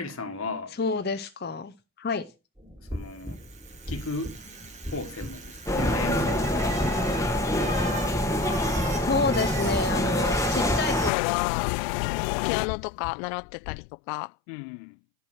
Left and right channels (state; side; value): drops out; right; at 11.1 s